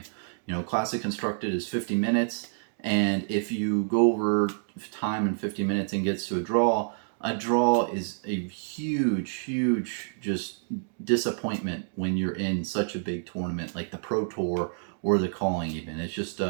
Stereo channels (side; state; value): left; silent; digital silence